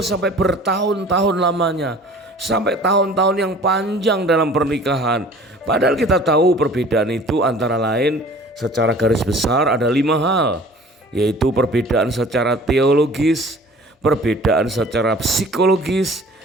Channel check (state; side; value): normal; both; correlation 0.47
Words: bertahun-tahun lamanya, sampai tahun-tahun yang panjang dalam pernikahan. Padahal kita tahu perbedaan itu antara lain secara garis besar ada 5 hal, yaitu perbedaan secara teologis, perbedaan secara psikologis,